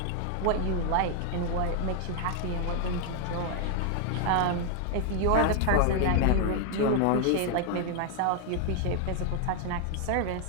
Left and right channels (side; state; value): both; different; correlation 0.00